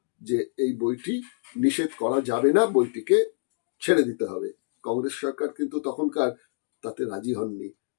যে এই বইটি নিষেধ করা যাবে না, বইটিকে ছেড়ে দিতে হবে। কংগ্রেস সরকার কিন্তু তখনকার তাতে রাজি হননি,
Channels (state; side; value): silent; right; digital silence